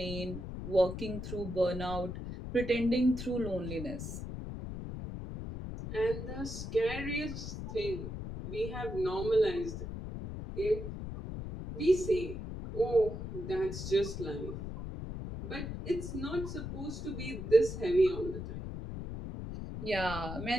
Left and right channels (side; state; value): left; noise; rumble, 7 dB below the sound